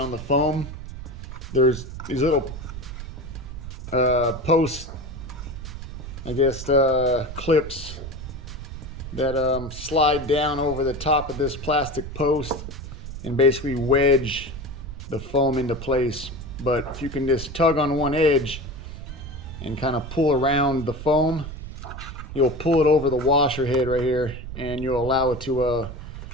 the foam. There's these little post, I guess, clips that slide down over the top of this plastic post and basically wedge the foam into place. But if you can just tug on one edge and kind of pull around the foam, you'll pull it over the washer head right here and you'll allow it to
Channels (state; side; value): noise; right; rumble, 10 dB below the sound